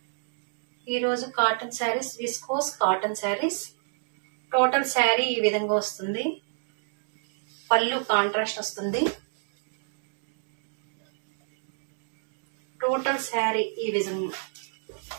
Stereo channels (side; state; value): left; silent; 59 dB below the other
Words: ఈరోజు cotton saris, viscose cotton saris. Total sari ఈ విధంగా వస్తుంది. పళ్ళు కాంట్రాస్ట్ వస్తుంది. టోటల్ శారీ ఈ